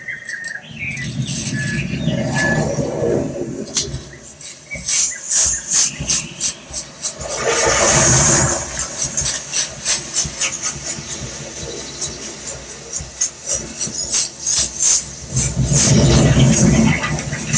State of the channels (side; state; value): both; identical; correlation 1.00